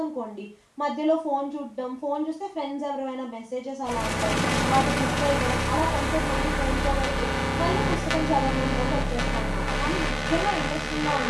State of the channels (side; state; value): both; identical; correlation 1.00